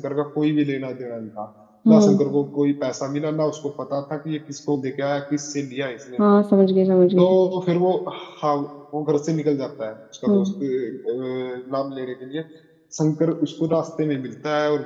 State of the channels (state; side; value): identical; both; correlation 1.00